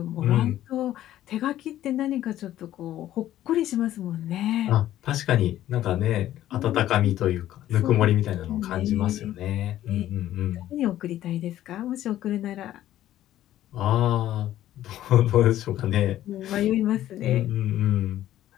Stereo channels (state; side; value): quieter; right; 13.1 dB